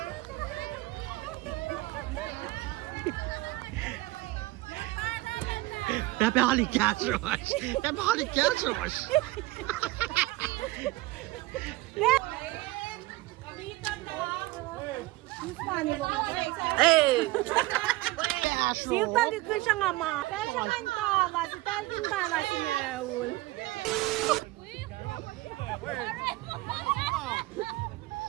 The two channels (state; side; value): quieter; left; 19.8 dB